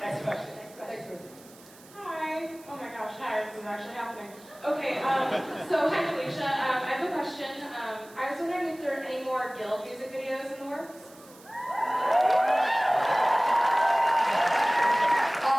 question. Next question. Hi. Oh my gosh, hi, this is actually happening. Okay, so hi Felicia. I have a question. I was wondering if there are any more Guild music videos in the works?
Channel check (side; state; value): right; noise; hiss, 23 dB below the sound